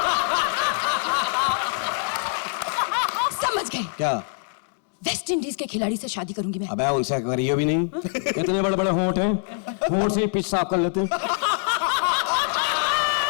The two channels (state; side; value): silent; right; 63 dB below the other